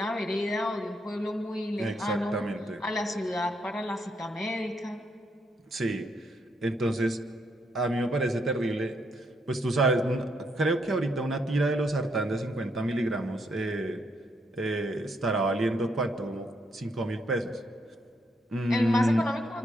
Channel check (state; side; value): normal; both; correlation 0.76